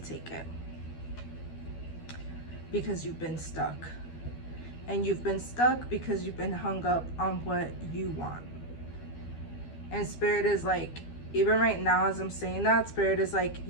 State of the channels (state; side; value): late; right; 12 ms